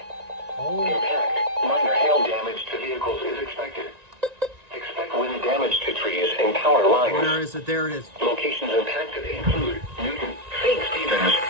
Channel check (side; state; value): left; late; 1.9 ms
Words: Impact, minor hail damage to vehicles is expected. Expect wind damage to trees and power lines. Where is it? There it is. Locations impacted include Newton, St. Stevens,